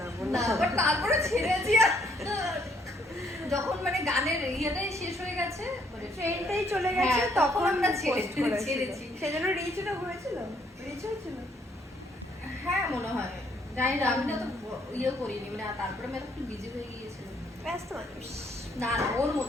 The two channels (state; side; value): normal; both; correlation 0.68